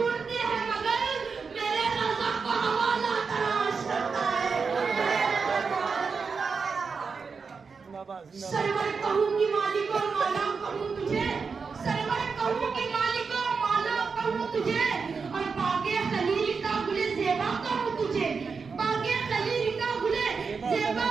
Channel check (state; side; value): quieter; left; 5.2 dB